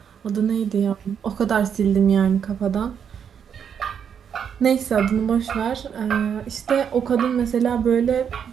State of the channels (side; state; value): left; quieter; 7.8 dB